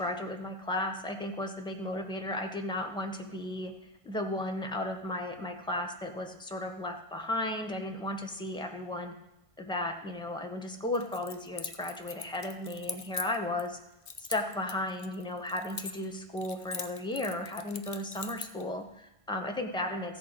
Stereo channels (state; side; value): late; left; 1.5 ms